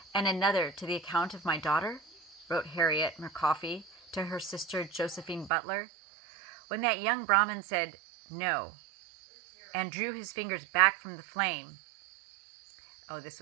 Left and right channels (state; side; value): drops out; left; at 5.5 s